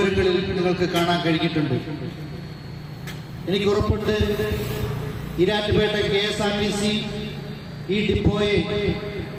നിങ്ങൾക്ക് കാണാൻ കഴിഞ്ഞിട്ടുണ്ട്. എനിക്ക് ഉറപ്പുണ്ട് ഈരാറ്റുപേട്ട KSRTC ഈ ഡിപ്പോയെ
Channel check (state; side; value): identical; both; correlation 1.00